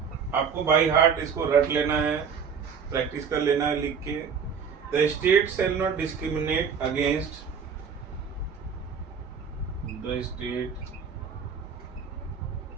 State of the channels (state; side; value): quieter; left; 6.5 dB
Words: आपको बाई हार्ट इसको रट लेना है, प्रैक्टिस कर लेना है लिख के। The state shall not discriminate against the state